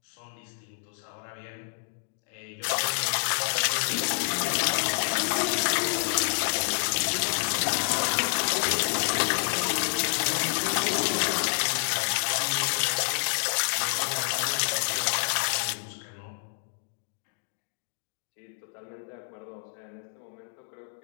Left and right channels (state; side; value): silent; right; digital silence